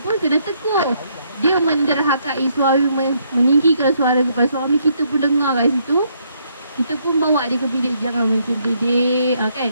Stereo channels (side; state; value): both; inverted; correlation -0.72